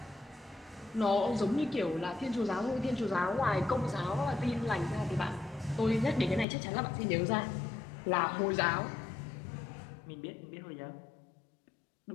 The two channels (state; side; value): drops out; right; at 6.5 s